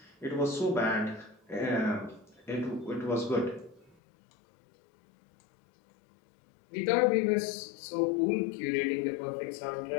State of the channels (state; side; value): drops out; right; at 4.0 s